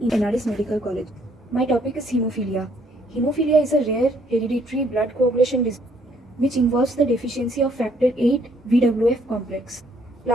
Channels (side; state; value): both; normal; correlation 0.66